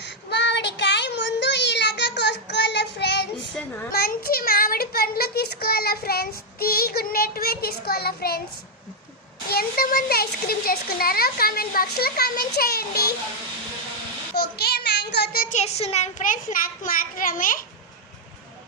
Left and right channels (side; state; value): both; normal; correlation 0.00